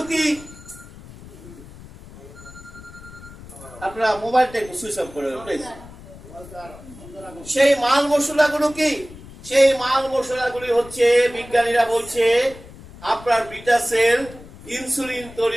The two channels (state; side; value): noise; left; rumble, 18 dB below the sound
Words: কি? আপনারা মোবাইলটা একটু সুইচ অফ করে প্লিজ। সেই মাল মশলাগুলো কি? সেই মাল মশলাগুলি হচ্ছে, বিজ্ঞানীরা বলছে আপনার বিটা সেল ইনসুলিন